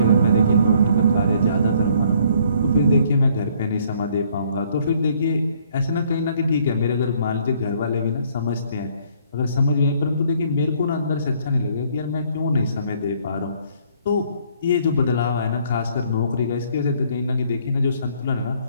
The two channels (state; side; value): inverted; both; correlation -0.63